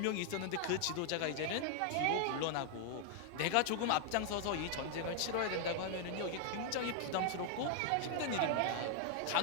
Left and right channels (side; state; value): both; different; correlation 0.00